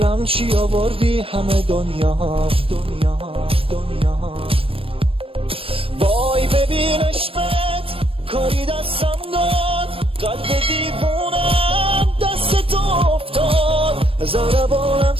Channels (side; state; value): left; late; 0.27 ms